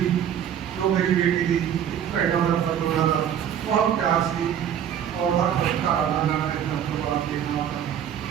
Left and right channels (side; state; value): left; quieter; 9.3 dB